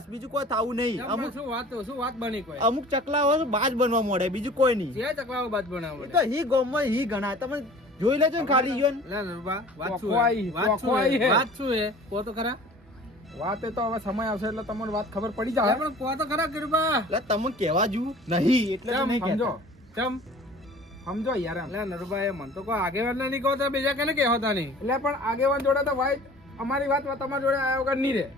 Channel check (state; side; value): normal; both; correlation 0.45